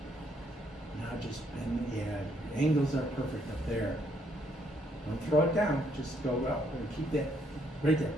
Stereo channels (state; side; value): normal; both; correlation 0.71